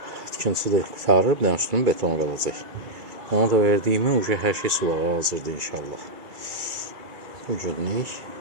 tikintisi də qutarır. Bir dənə üstünün betonu qalacaq. Ona da verdiyimi hər şey sulağa hazırdır inşallah. Bu günlük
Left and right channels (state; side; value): late; left; 2.3 ms